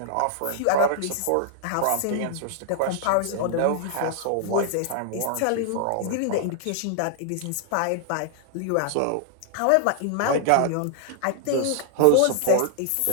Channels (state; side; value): different; both; correlation 0.00